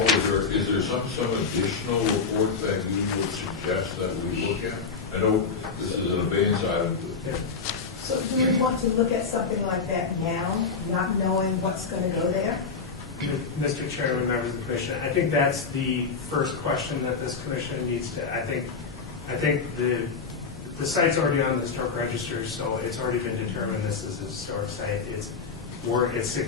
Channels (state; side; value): quieter; right; 5.1 dB